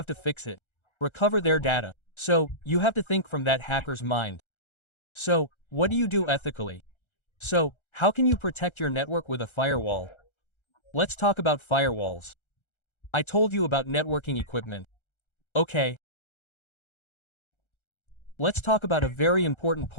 to fix it. Recover their data. So, you have to think from that hacker's mind. So, what do you do ethically? So, how can you protect your network with a firewall? Let's talk about firewalls. I told you about networking equipment. Okay. Let's talk about a very important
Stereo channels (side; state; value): right; late; 1.3 ms